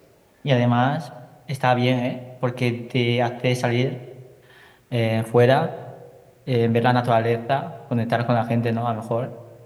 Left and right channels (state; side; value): identical; both; correlation 1.00